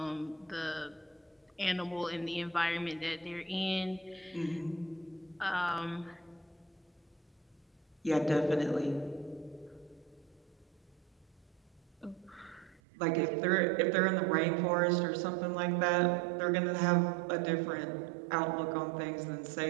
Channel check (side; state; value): left; drops out; at 12.8 s